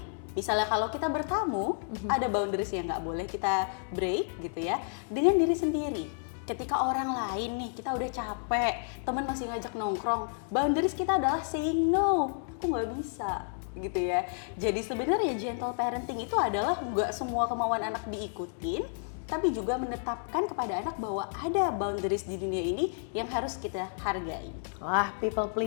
Misalnya kalau kita bertamu, ada boundaries yang nggak boleh kita break gitu ya. Dengan diri sendiri. Ketika orang lain nih, kita udah capek, teman masih ngajak nongkrong, boundaries kita adalah saying no, aku nggak bisa gitu ya. Jadi sebenarnya gentle parenting itu adalah nggak semua kemauan anak diikutin, tapi juga menetapkan kepada anak bahwa ada boundaries di dunia ini yang harus kita hargai. Wah, people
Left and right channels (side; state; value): right; silent; digital silence